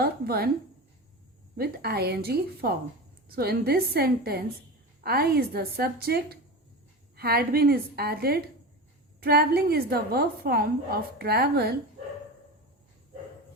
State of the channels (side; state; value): both; normal; correlation 0.26